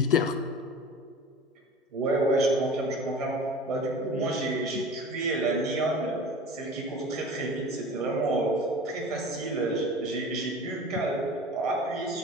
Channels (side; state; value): both; normal; correlation 0.38